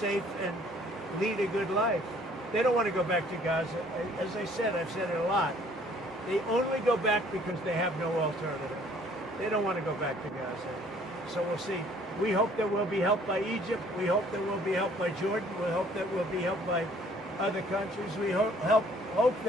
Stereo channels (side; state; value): both; normal; correlation 0.58